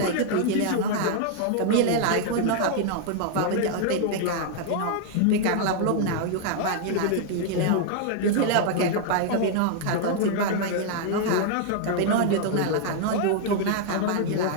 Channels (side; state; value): both; different; correlation 0.00